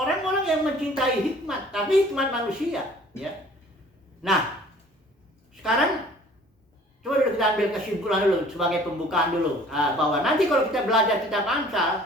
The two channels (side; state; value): both; normal; correlation 0.52